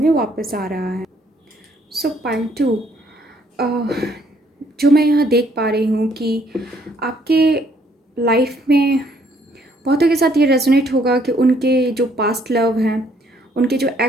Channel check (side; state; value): both; normal; correlation 0.66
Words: वापस आ रहा है। सो पाइल 2, जो मैं यहाँ देख पा रही हूँ कि आपके लाइफ में बहुतों के साथ ये रेजोनेट होगा कि उनके जो पास्ट लव हैं, उनके जो